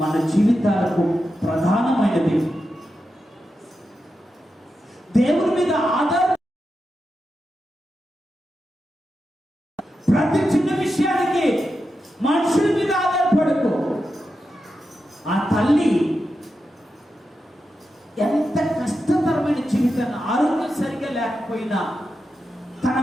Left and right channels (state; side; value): normal; both; correlation 0.89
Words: మన జీవితాలకు ప్రధానమైనది. దేవుని మీద ఆధార ప్రతి చిన్న విషయానికి మనుషుల మీద ఆధారపడకు. ఆ తల్లి ఎంత కష్టతరమైన జీవితాన్ని, ఆరోగ్యం సరిగా లేకపోయినా తన